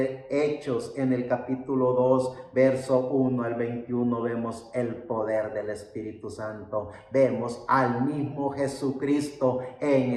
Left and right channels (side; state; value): both; identical; correlation 1.00